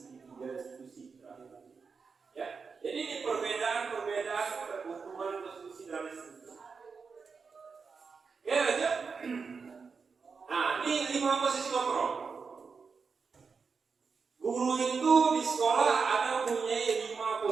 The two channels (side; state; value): left; quieter; 5.2 dB